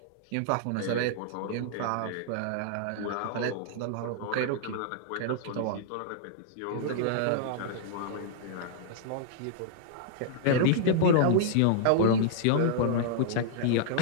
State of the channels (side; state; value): both; different; correlation -0.01